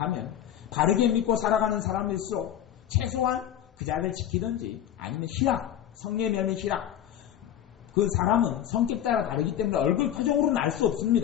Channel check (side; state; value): right; quieter; 10.7 dB